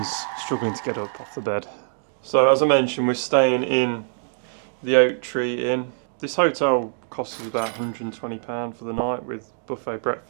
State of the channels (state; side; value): silent; left; 63 dB below the other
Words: struggling to get up off the bed. So as I mentioned, we're staying in the Oak Tree Inn. This hotel costs us about £120 for the night with buffet